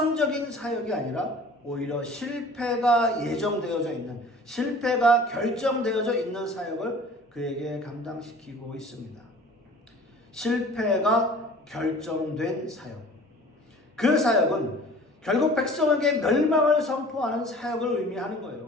사역이 아니라 오히려 실패가 예정되어져 있는, 실패가 결정되어져 있는 사역을 그에게 감당시키고 있습니다. 실패가 결정된 사역. 그 사역은 결국 백성에게 멸망을 선포하는 사역을 의미하는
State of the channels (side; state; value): both; normal; correlation 0.46